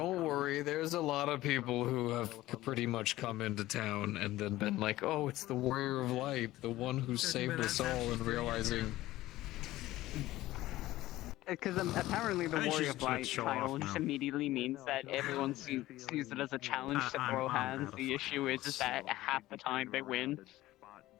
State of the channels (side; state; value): right; quieter; 16.4 dB